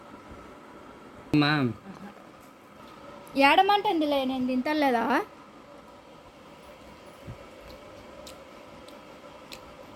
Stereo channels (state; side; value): identical; both; correlation 1.00